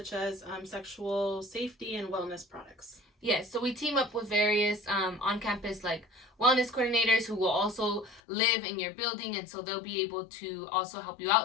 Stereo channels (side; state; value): right; drops out; at 8.2 s